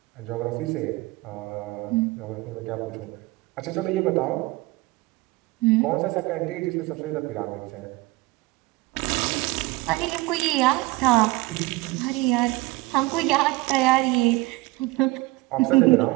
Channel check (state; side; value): quieter; left; 21.3 dB